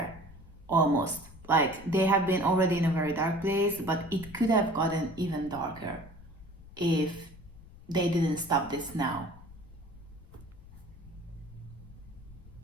almost. Like they have been already in a very dark place, but it could have gotten even darker if they didn't stop this now.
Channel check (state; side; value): noise; left; rumble, 19 dB below the sound